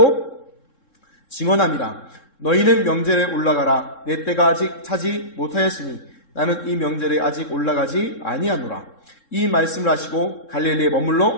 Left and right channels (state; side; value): late; right; 3.7 ms